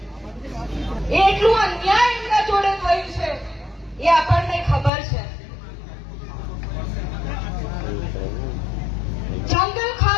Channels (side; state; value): right; drops out; at 4.9 s